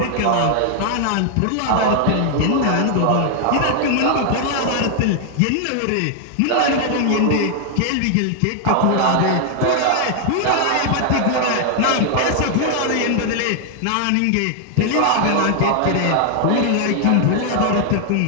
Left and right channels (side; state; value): both; different; correlation 0.00